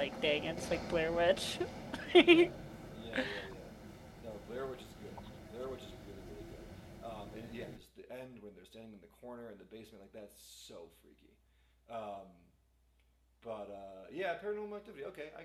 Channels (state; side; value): identical; both; correlation 1.00